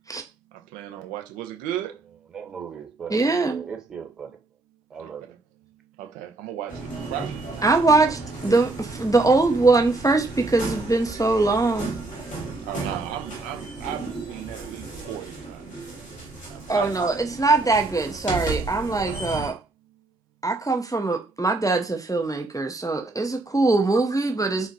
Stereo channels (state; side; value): quieter; left; 3.1 dB